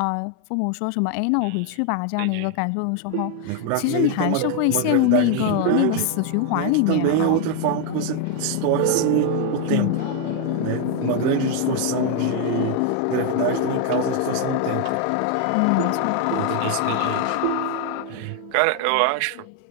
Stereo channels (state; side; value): different; both; correlation 0.00